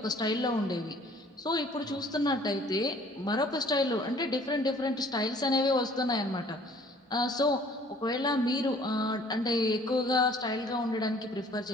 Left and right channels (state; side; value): normal; both; correlation 0.55